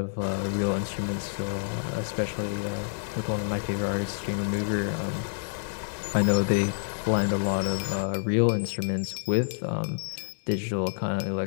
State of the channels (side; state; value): right; silent; digital silence